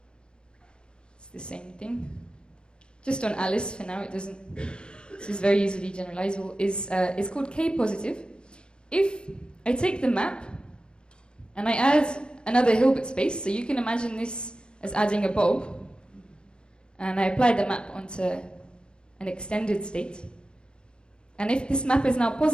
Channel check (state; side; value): late; right; 0.051 ms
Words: it's the same thing. Just on Alice for now, it doesn't, this is very easily generalizable, is called K positive. If I take the map and I add another Hilbert space, so you can imagine this as adding a bulb, and I apply the map onto an extended state. And if this map is now